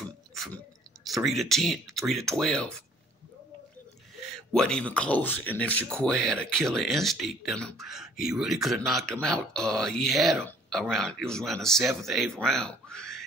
3 to 10, 3 to 12, wasn't even close. And if Shakur had a killer instinct in him, he really could have knocked him out. He had him it was around the 7th, 8th round.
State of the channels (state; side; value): normal; both; correlation 0.58